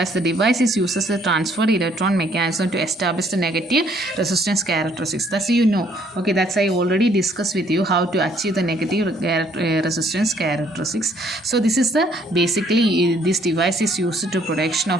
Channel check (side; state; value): both; normal; correlation 0.64